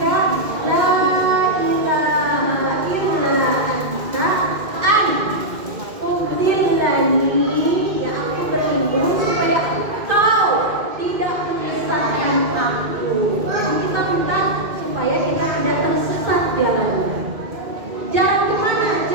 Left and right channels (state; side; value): late; left; 2.5 ms